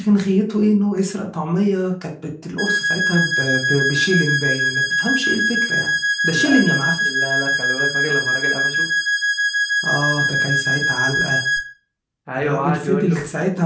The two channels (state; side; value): identical; both; correlation 1.00